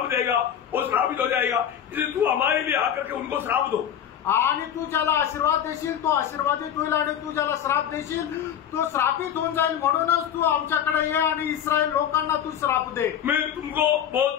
देगा वो श्रापित हो जाएगा, इसलिए तू हमारे लिए आकर के उनको श्राप दो. आणि तू ज्याला आशीर्वाद देशील तो आशीर्वादित होईल आणि तू ज्याला श्राप देशील तो श्रापित होऊन जाईल. म्हणूनच तू आमच्याकडे ये आणि इस्रायल लोकांना तू श्राप दे. मैं तुमको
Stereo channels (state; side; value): quieter; right; 9.5 dB